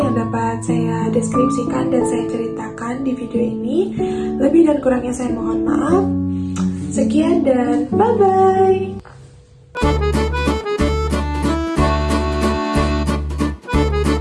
dapat saya deskripsikan dan saya ceritakan di video ini. Lebih dan kurangnya saya mohon maaf. Sekian dan bye-bye.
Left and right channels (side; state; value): both; identical; correlation 1.00